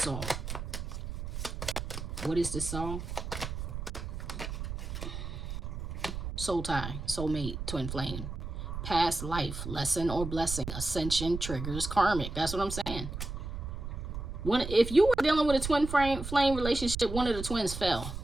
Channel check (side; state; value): right; noise; rumble, 6 dB below the sound